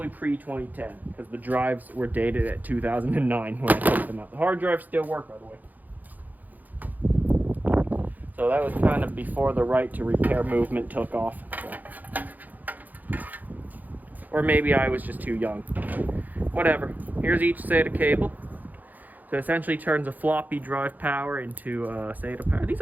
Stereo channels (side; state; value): left; late; 0.082 ms